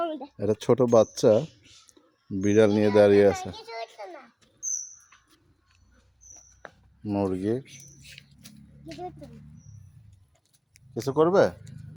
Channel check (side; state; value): both; identical; correlation 1.00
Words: একটা ছোট বাচ্চা বিড়াল নিয়ে দাঁড়িয়ে আছে। মুরগি কিছু করবে